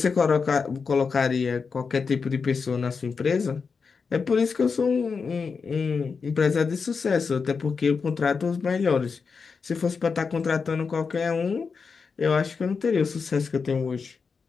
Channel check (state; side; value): quieter; right; 5.2 dB